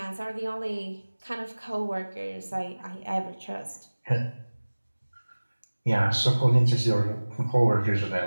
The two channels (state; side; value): inverted; both; correlation -1.00